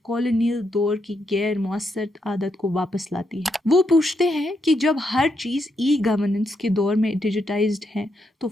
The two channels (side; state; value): both; normal; correlation 0.80